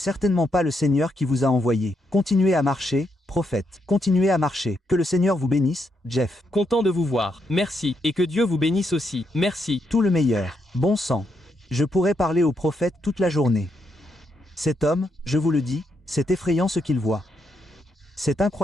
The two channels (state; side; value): normal; both; correlation 0.79